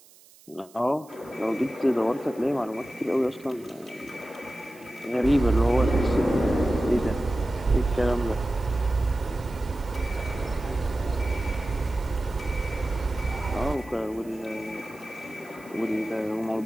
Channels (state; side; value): noise; right; hiss, 25 dB below the sound